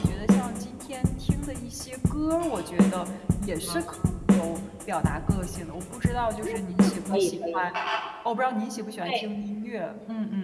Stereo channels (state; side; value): identical; both; correlation 1.00